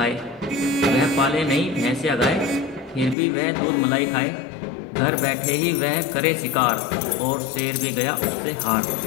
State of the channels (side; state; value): right; drops out; at 3.2 s